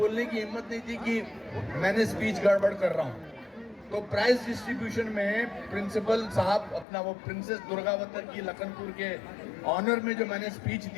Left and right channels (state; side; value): drops out; right; at 6.9 s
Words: की हिम्मत नहीं थी कि मैंने स्पीच गड़बड़ कर रहा हूँ। तो प्राइज डिस्ट्रीब्यूशन में प्रिंसिपल साहब अपना वो प्रिंसेस दुर्गावती की लखनपुर के ऑनर में जो मैंने स्पीच